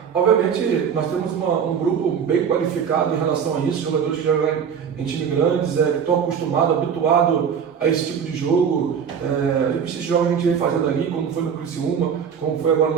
obviamente, nós temos um grupo bem qualificado em relação a isso, jogadores que jogam em times grandes, que estão acostumados, habituados a esse tipo de jogo. Esses jogos a gente vem fazendo ali, como foi no Criciúma, como foi agora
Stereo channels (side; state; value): left; quieter; 7.3 dB